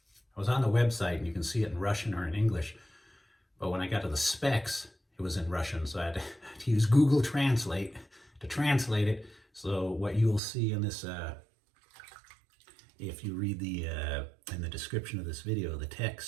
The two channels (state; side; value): drops out; left; at 10.4 s